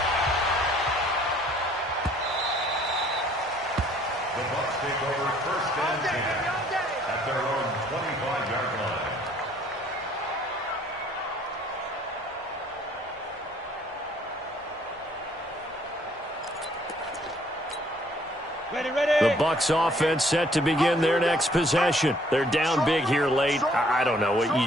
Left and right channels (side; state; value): both; normal; correlation 0.61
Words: The Bucs take over first and 10 at their own 25-yard line. The Bucs offense set to begin their next possession. They're down big here late. I don't know.